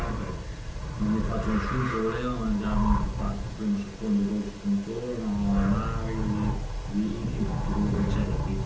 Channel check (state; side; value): identical; both; correlation 1.00